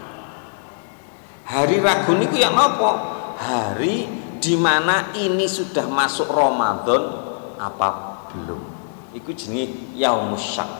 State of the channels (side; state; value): right; silent; digital silence